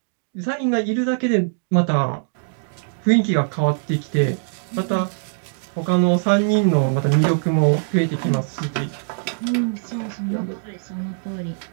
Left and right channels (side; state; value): left; silent; digital silence